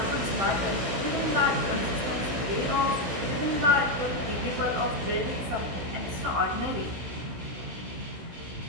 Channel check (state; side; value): late; left; 16 ms